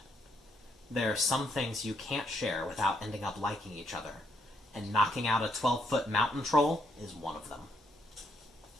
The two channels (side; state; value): both; normal; correlation 0.73